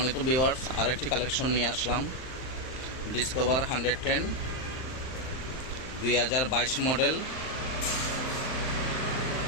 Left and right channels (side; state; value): right; late; 39 ms